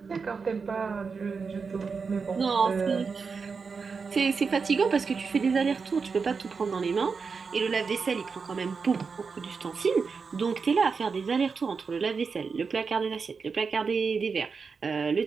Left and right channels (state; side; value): quieter; left; 5.2 dB